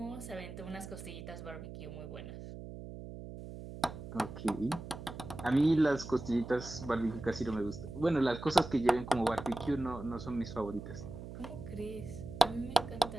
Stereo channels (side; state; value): right; noise; hum, 11 dB below the sound